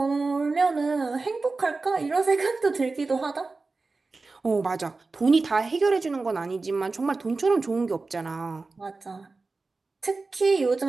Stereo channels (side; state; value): left; quieter; 3.8 dB